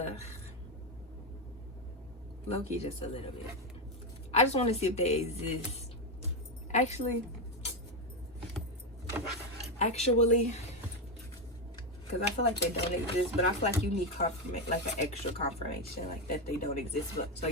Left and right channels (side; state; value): both; normal; correlation 0.09